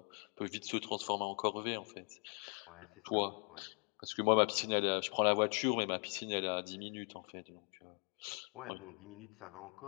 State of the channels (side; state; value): right; quieter; 38.6 dB